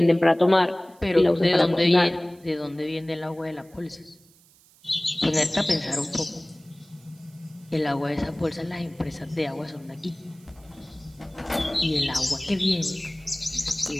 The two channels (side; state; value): right; noise; hiss, 29 dB below the sound